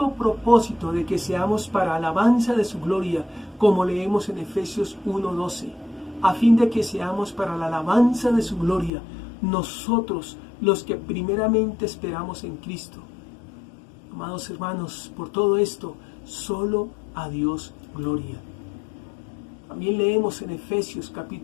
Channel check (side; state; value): right; drops out; at 8.9 s